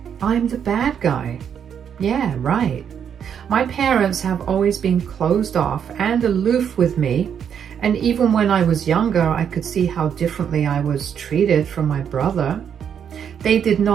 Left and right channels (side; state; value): left; quieter; 8.1 dB